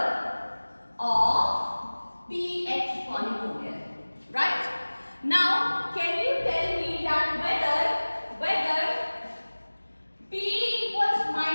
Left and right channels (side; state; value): both; inverted; correlation -1.00